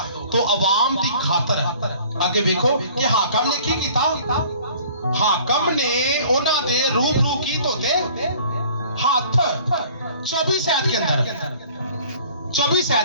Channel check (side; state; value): both; inverted; correlation -0.51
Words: तो अवाम की खातर आगे देखो कि हाकिम ने की था। हाकिम ने उन्होंने दे रूबरू की तो दे हाथ 24 आयत के अंदर 24